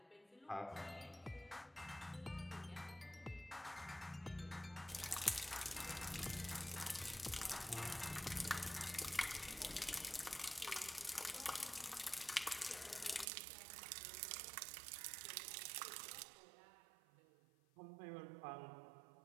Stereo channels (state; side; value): drops out; left; at 13.2 s